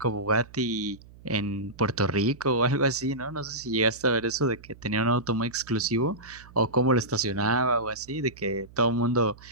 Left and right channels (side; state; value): right; noise; hum, 22 dB below the sound